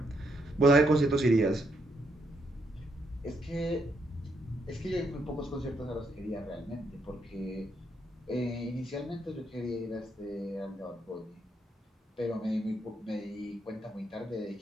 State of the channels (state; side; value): normal; both; correlation 0.76